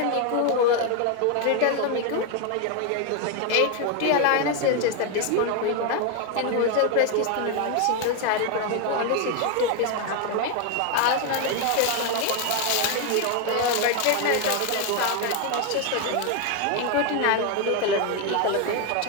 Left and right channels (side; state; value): both; different; correlation 0.01